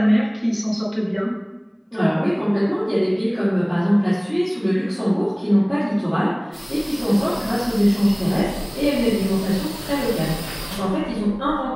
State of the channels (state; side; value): identical; both; correlation 1.00